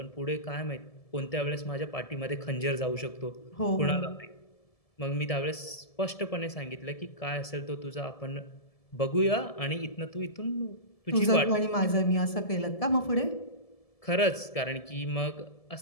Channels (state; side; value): late; right; 1.7 ms